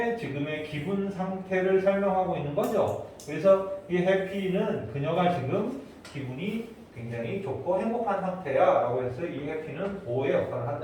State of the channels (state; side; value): identical; both; correlation 1.00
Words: 지금의 기분 상태를 설명하고 있는 거죠. 그래서 이 happy는 그녀가 지금 기분이 굉장히 좋고 행복한 상태야 라고 해서 이 해피는 보호의 역할을